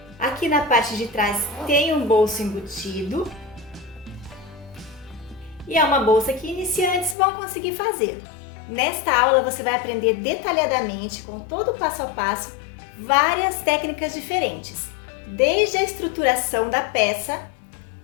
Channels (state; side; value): drops out; right; at 7.2 s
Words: Aqui na parte de trás tem um bolso embutido. E é uma bolsa que iniciantes vão conseguir fazer. Nesta aula você vai aprender detalhadamente, com todo o passo a passo, várias técnicas diferentes. Desde a estruturação da peça,